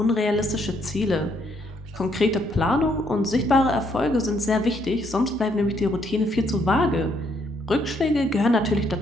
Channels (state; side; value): normal; both; correlation 0.71